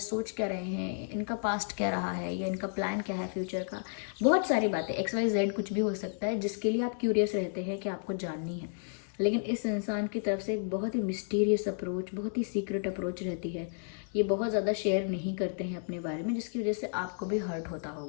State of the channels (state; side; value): silent; right; digital silence